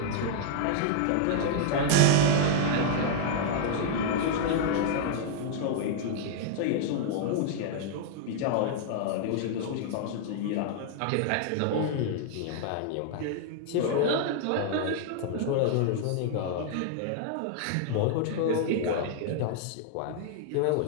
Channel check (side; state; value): both; different; correlation -0.01